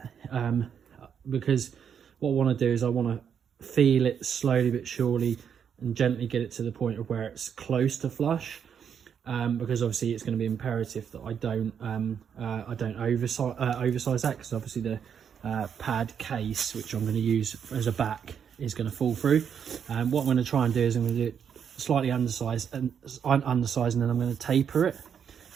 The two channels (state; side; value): quieter; left; 7.8 dB